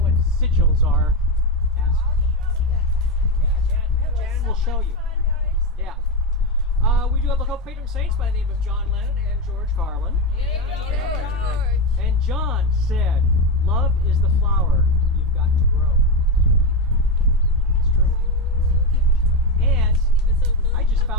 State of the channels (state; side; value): normal; both; correlation 0.12